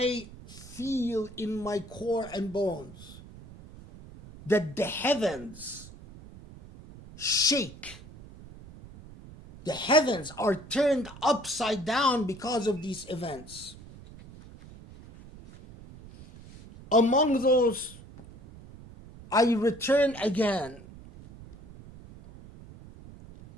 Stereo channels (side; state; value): right; noise; rumble, 18 dB below the sound